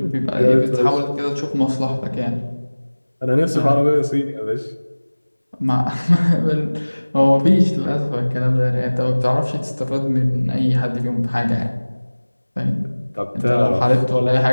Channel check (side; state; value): both; inverted; correlation -1.00